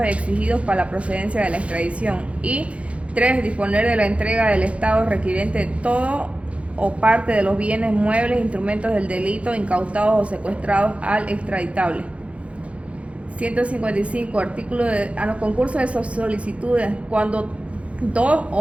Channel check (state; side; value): late; left; 0.062 ms